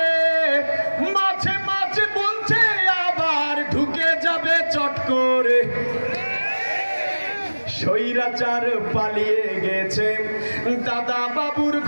মাঝে মাঝে বলছে আবার ঢুকে যাবে চট করে। স্বৈরাচার পালিয়ে গেছে দাদা বাবুর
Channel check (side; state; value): both; inverted; correlation -1.00